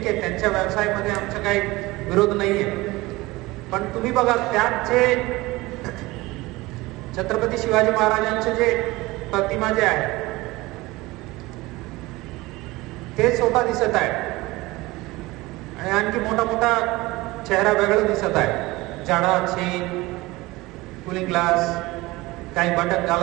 आहे, त्यांच्या व्यवसायामध्ये आमचा काही विरोध नाहीये। पण तुम्ही बघा त्यात जे छत्रपती शिवाजी महाराजांचे जे प्रतिमा जे आहे ते स्वतः दिसत आहे आणि आणखी मोठा मोठा चेहरा वेगळा दिसत आहे। जाडा चेन, कूलिंग ग्लास, काही बटन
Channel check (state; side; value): quieter; left; 20.6 dB